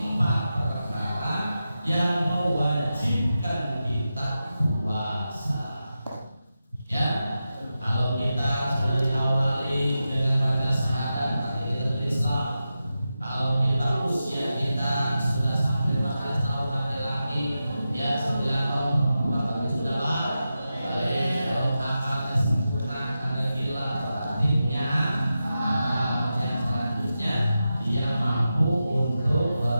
perkara yang mewajibkan kita puasa. Ya, kalau kita sudah diawali dengan baca syahadat, berarti kita sudah Islam. Kalau kita usia kita sudah sampai 14 tahun laki-laki, ya 9 tahun perempuan, tapi sudah balik. Kalau akalnya sempurna, karena gila, berarti punya akal. Yang selanjutnya dia mampu untuk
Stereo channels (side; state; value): both; inverted; correlation -0.91